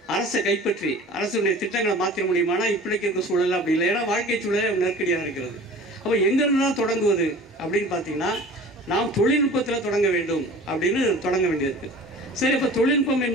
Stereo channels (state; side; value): normal; both; correlation 0.42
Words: அரசை கைப்பற்றி அரசுடைய திட்டங்களை மாற்ற முடியுமானா இப்படிக்கு இருக்க சூழல் அப்படி இல்லை. ஏன்னா வாழ்க்கை சூழலே நெருக்கடியாக இருக்கிறது. அப்ப எங்கிருந்து தான் தொடங்குவது அப்படின்னு பார்த்தீங்கன்னா நாம் தொழில்நுட்பத்தில் தொடங்க வேண்டும் அப்படின்னு தொடங்க வேண்டியிருக்கு. சரி, இப்ப தொழில்நுட்பம்